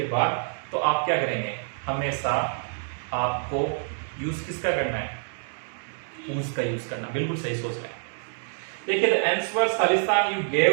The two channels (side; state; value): left; silent; digital silence